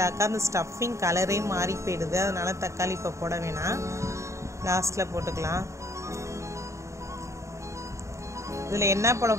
அந்த ஸ்டஃபிங் கலரே மாறி போயிடுது. அதனால் தக்காளி இப்போ போட வேணாம், லாஸ்ட்டில் போட்டுக்கலாம். இதில் என்ன போட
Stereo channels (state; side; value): late; left; 0.14 ms